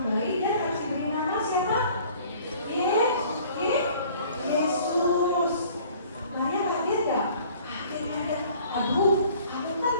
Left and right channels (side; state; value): both; inverted; correlation -0.53